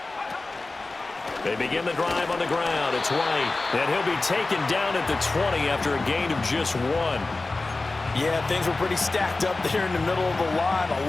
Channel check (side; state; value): right; quieter; 3.3 dB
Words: They begin the drive on the ground. It's White. And he'll be taken down at the 20 after a gain of just 1. Yeah, things were pretty stacked up there in the middle of the line.